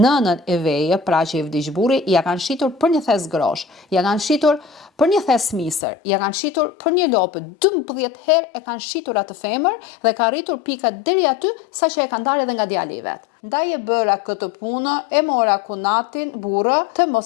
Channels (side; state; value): right; drops out; at 5.8 s